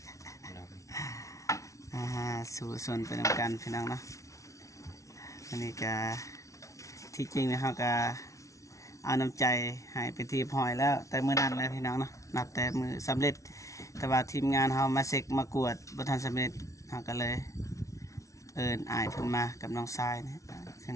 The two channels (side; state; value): right; late; 0.15 ms